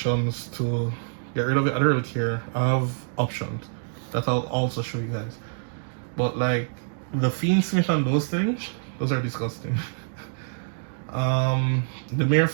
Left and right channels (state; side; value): silent; left; digital silence